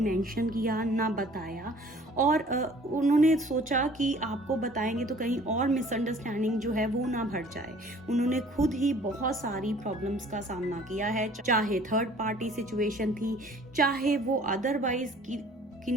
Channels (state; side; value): normal; both; correlation 0.52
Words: किया ना बताया, और उन्होंने सोचा कि आपको बताएंगे तो कहीं और मिसअंडरस्टैंडिंग जो है वो ना बढ़ जाए। उन्होंने खुद ही बहुत सारी प्रॉब्लम्स का सामना किया है, चाहे थर्ड पार्टी सिचुएशन थी, चाहे वो अदरवाइज की